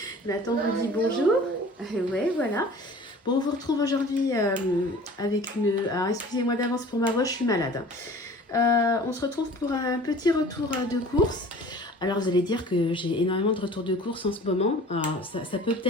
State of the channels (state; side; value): normal; both; correlation 0.45